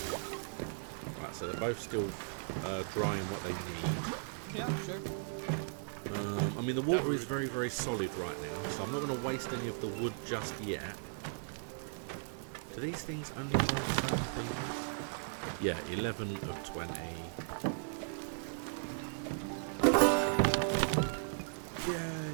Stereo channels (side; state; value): left; silent; digital silence